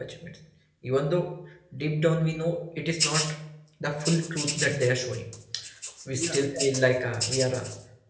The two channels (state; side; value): identical; both; correlation 1.00